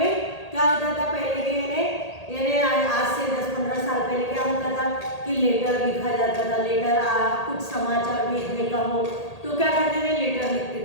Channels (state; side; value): late; right; 1.8 ms